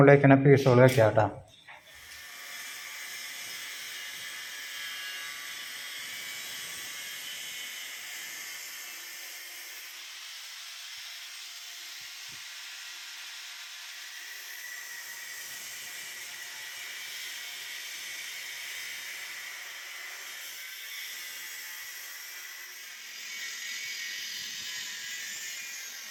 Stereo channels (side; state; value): both; identical; correlation 1.00